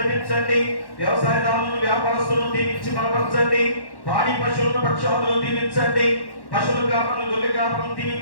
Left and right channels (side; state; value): right; late; 1.1 ms